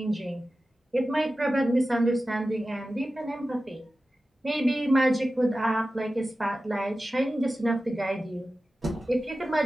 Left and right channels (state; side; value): normal; both; correlation 0.94